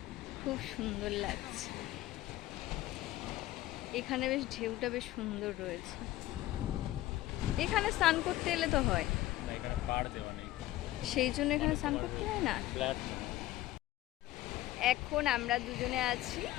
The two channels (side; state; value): right; quieter; 15.9 dB